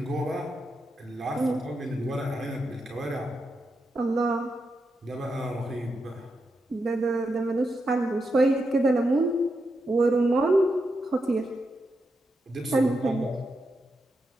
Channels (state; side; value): normal; both; correlation 0.85